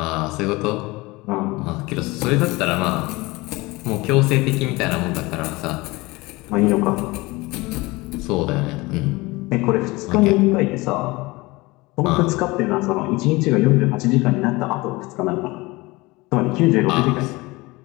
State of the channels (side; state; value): right; quieter; 22.4 dB